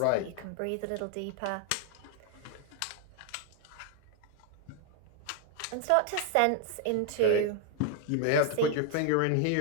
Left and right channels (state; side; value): different; both; correlation 0.01